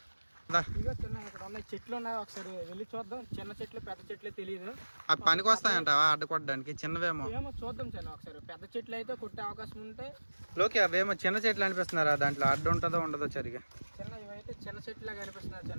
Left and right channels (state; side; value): inverted; both; correlation -1.00